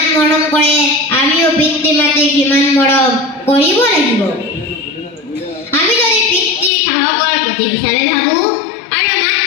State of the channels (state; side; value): drops out; right; at 6.7 s